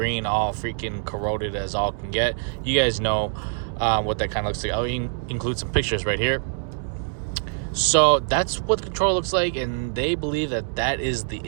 all freaking corroded as all can get. You guys know what that kind of looks like. I'll include some pictures right here. So that's what the controller looks like, and they believe that that is the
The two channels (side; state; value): left; silent; 62 dB below the other